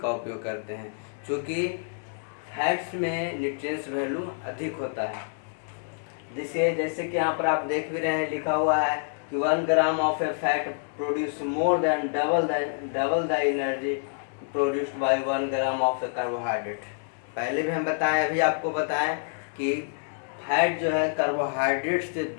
उपयोग करते हैं, क्योंकि फैट्स में न्यूट्रिएंट्स वैल्यू अधिक होता है। जैसे कि यहाँ पर आप देख भी रहे हैं, लिखा हुआ है कि 1 gram of A fat produce more than double the energy produced by 1 gram of A carbohydrate. पहले भी हम बताएं, अभी आपको बताएं कि फैट जो है कार्बोहाइड्रेट से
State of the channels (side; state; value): right; silent; digital silence